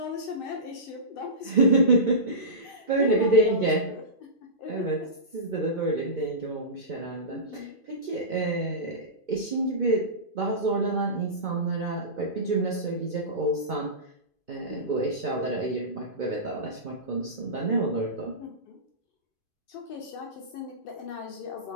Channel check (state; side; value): late; right; 2.5 ms